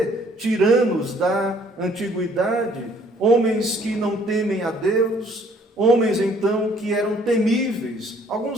tiranos da antiguidade, homens que não temem a Deus, homens então que eram temíveis.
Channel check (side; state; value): both; normal; correlation 0.60